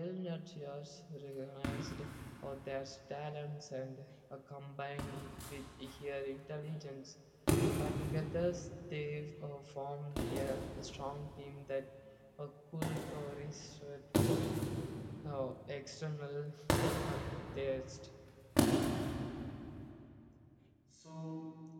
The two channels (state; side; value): identical; both; correlation 1.00